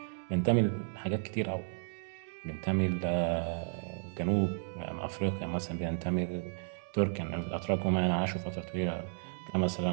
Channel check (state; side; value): silent; left; digital silence